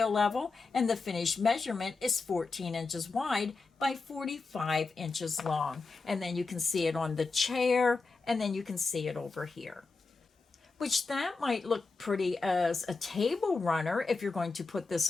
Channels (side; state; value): right; quieter; 4.1 dB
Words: level, and the finished measurement is 14 inches wide by 45 inches long. And then you can see it on the chair, and then you can see it over here. Which that might look pretty as a table runner. If you're going to put this